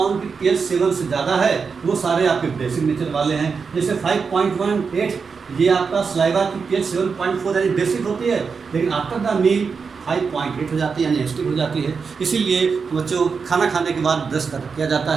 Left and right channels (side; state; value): left; quieter; 5.4 dB